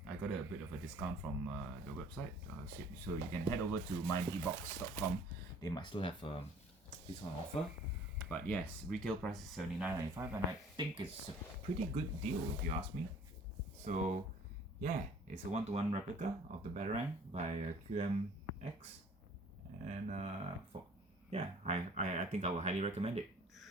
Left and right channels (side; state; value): both; normal; correlation 0.53